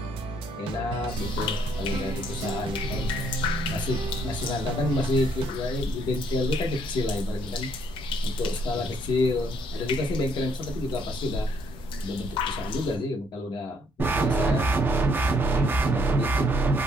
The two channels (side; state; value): both; normal; correlation 0.68